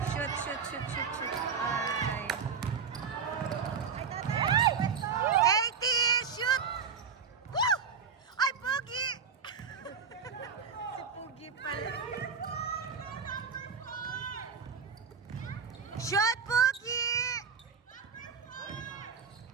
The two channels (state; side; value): quieter; left; 6.1 dB